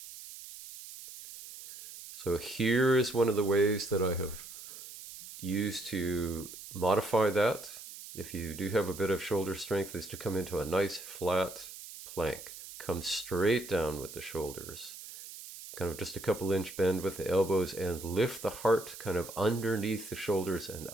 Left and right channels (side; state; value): right; noise; hiss, 13 dB below the sound